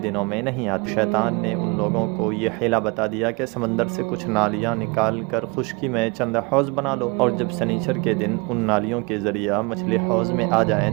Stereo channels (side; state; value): left; quieter; 29.2 dB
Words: میں نہیں آتی۔ شیطان نے ان لوگوں کو یہ حیلہ بتا دیا کہ سمندر سے کچھ نالیاں نکال کر خشکی میں چند حوض بنا لو، اور جب سنیچر کے دن ان نالیوں کے ذریعہ مچھلی حوض میں آ جائیں